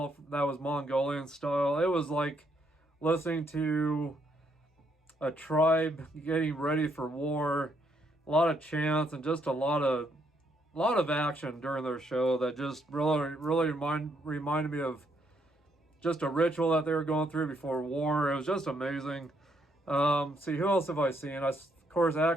that was Mongolian style. It was like listening to a tribe getting ready for war, a lot of chants and just a lot of action during their show that just really reminded me of just a ritual that they were going through before war. It was just amazing. See, who else have I seen? Of course,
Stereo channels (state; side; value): normal; both; correlation 0.73